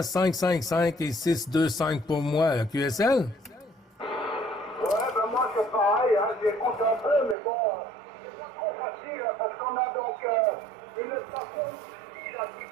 555 et 625 pour moi, là. QSL? Ouais, ben moi c'est pareil, hein, j'écoute un peu, mais bon, c'est pas trop facile, hein, parce qu'on a donc une station ici, là, qui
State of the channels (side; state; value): left; drops out; at 7.4 s